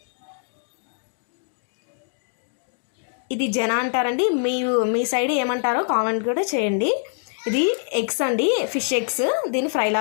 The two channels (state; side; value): silent; right; digital silence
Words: ఇది జన అంటారండి, మీ సైడ్ ఏమంటారో కామెంట్ కూడా చేయండి. ఇది ఎగ్స్ అండి, ఫిష్ ఎగ్స్, దీన్ని ఫ్రై